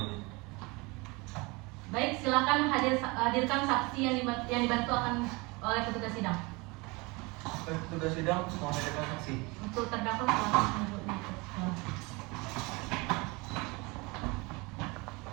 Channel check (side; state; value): left; quieter; 26.0 dB